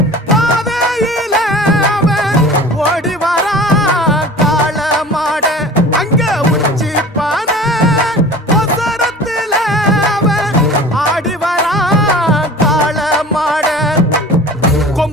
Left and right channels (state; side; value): normal; both; correlation 0.40